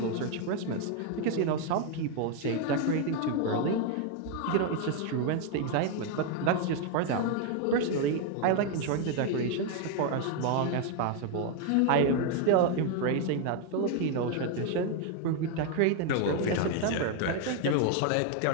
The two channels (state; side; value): different; both; correlation 0.01